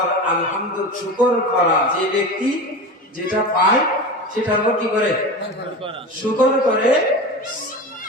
আলহামদুলিল্লাহ শুকর করা। যে ব্যক্তি যেটা পায় সেটার উপর কি করে? শুকর করে,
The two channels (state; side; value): normal; both; correlation 0.28